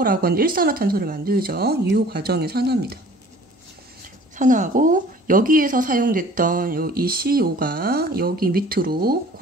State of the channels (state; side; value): normal; both; correlation 0.49